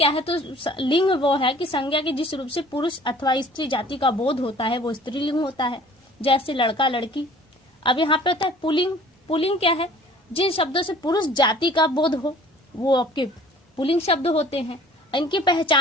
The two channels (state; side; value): normal; both; correlation 0.51